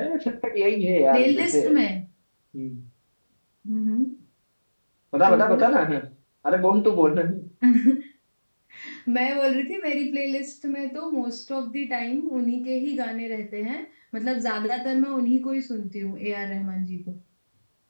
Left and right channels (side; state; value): both; inverted; correlation -1.00